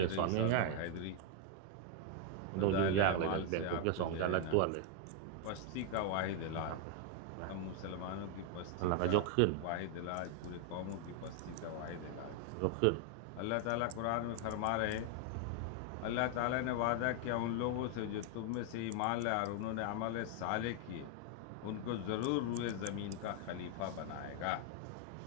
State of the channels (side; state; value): both; different; correlation 0.00